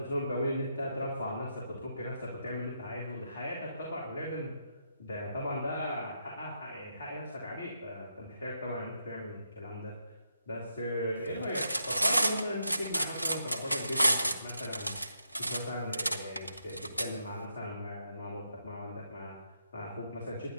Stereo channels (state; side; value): inverted; both; correlation -0.80